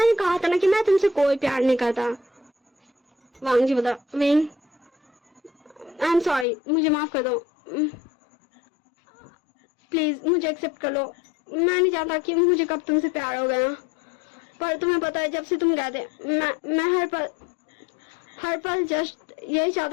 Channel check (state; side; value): drops out; right; at 6.5 s